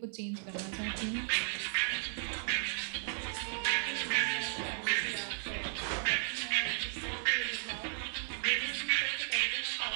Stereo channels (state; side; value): silent; left; digital silence